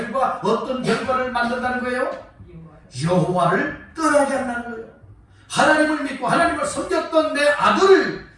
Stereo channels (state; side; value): identical; both; correlation 1.00